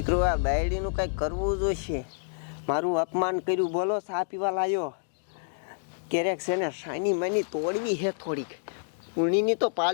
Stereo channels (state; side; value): silent; right; digital silence